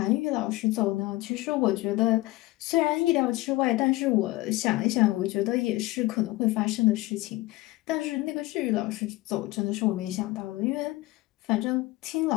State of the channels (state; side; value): quieter; right; 19.2 dB